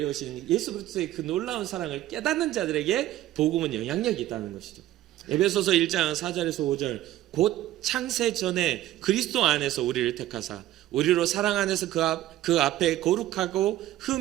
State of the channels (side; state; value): left; quieter; 14.2 dB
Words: 예수 그리스도의 그 놀라운 사랑을 깨닫는 자들에게 복음은 영향력이 있다는 것이죠. 에베소서 1장 4절에서 5절 곧 창세 전에 그리스도 안에서 우리를 택하사 우리로 사랑 안에서 그 앞에 거룩하고